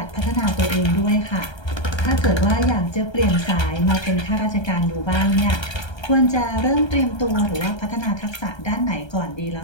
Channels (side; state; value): right; late; 1.3 ms